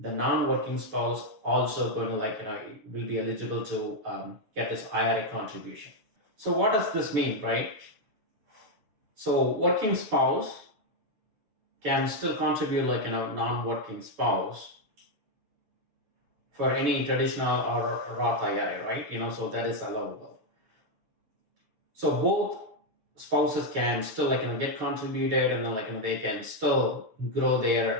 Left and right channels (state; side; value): late; left; 6.9 ms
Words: non-working spouse also going to will be eligible to get this IRA contribution. So what does this mean, right? So working spouse can still contribute non-working spouse for any traditional or Roth IRA, right? So that is allowable. So both spouses can still get contributed, and then they can still grow